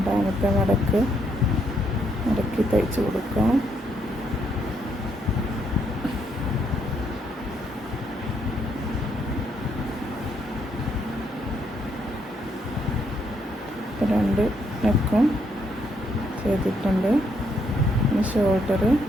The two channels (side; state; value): both; normal; correlation 0.74